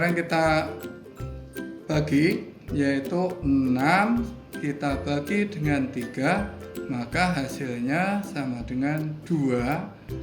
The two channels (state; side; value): identical; both; correlation 1.00